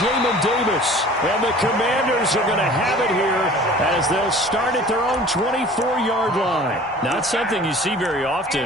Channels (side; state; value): both; normal; correlation 0.45